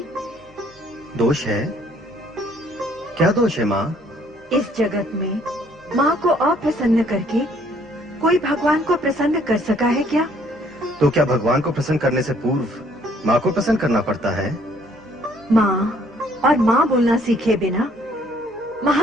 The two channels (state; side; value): normal; both; correlation 0.63